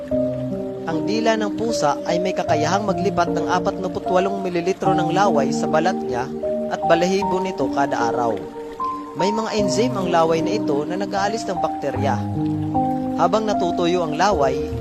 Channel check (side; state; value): both; identical; correlation 1.00